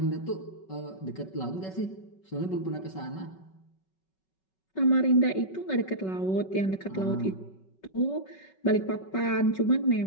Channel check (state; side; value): late; right; 5.3 ms